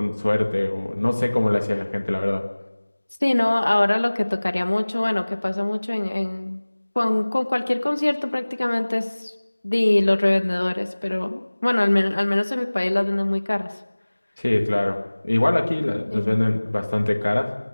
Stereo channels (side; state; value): both; inverted; correlation -1.00